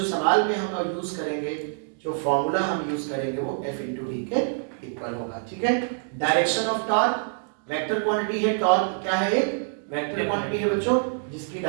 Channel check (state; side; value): silent; left; digital silence